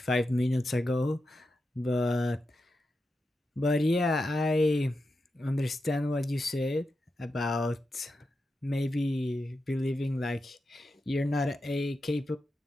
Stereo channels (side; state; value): both; normal; correlation 0.89